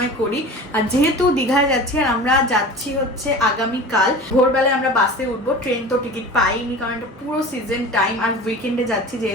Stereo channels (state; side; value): normal; both; correlation 0.36